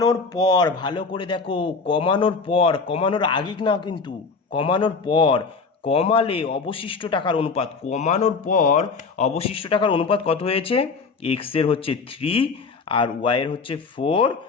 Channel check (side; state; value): right; quieter; 4.6 dB